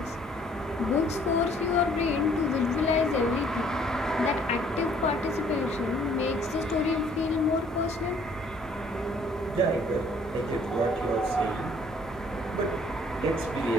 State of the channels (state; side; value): normal; both; correlation 0.60